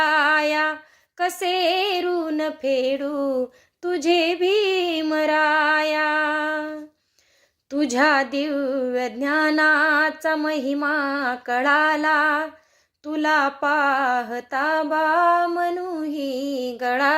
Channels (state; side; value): identical; both; correlation 1.00